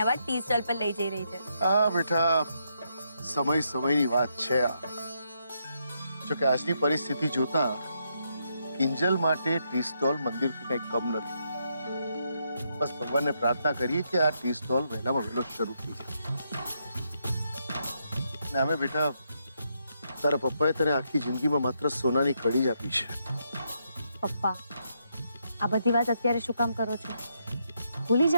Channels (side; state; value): both; inverted; correlation -0.79